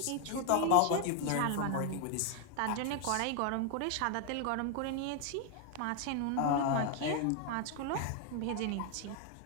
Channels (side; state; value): both; different; correlation 0.01